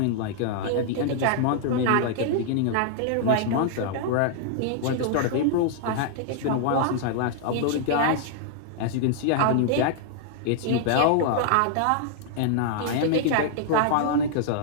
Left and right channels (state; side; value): different; both; correlation -0.01